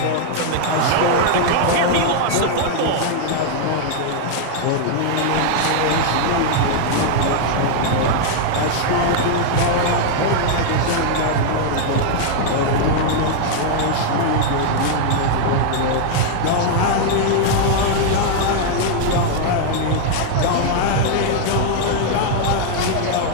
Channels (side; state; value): both; different; correlation 0.00